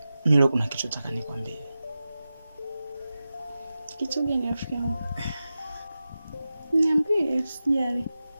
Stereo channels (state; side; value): inverted; both; correlation -0.93